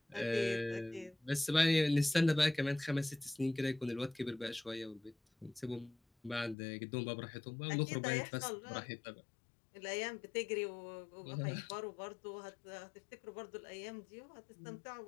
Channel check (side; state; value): right; drops out; at 6.6 s